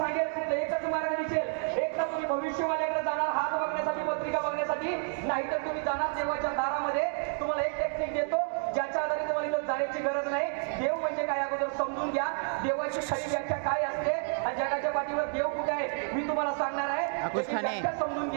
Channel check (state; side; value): silent; left; 57 dB below the other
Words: तिथं एकच मार्ग दिसेल. एक तर तुम्ही भविष्यवाल्याकडे जाणार हात बघण्यासाठी, पत्रिका बघण्यासाठी, नाहीतर तुम्ही जाणार देवाच्या दारामध्ये. तुम्हाला एक टेक्निक देतो ज्याच्या आधारे तुम्हाला जाण्याची गरज नाही. देव म्हणजे काय अगोदर समजून घ्या. देवाची खरी व्याख्या काय असते आणि जगाच्या पाठीवर देव कुठे आहे मी तुम्हाला सांगणार आहे. समजून